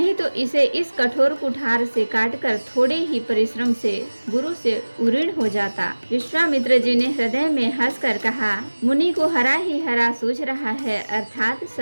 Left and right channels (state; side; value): inverted; both; correlation -1.00